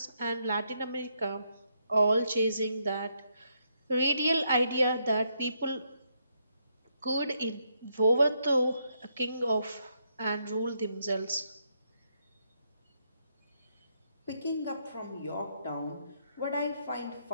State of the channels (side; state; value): both; inverted; correlation -0.77